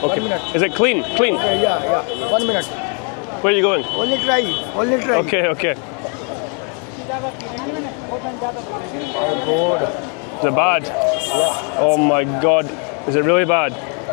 1 minute. Is it clean? Clean. Okay, yeah. 1 minute. Where are you going? Only try. Only try. Okay. Okay. Oh, good. Is it bad? Yeah. Oh my God. Is it really bad?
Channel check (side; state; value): right; quieter; 38.5 dB